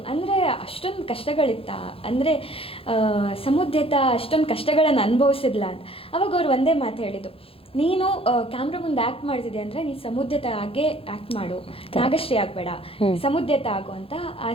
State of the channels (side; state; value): right; late; 0.27 ms